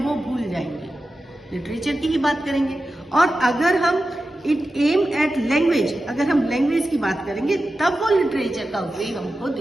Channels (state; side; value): normal; both; correlation 0.93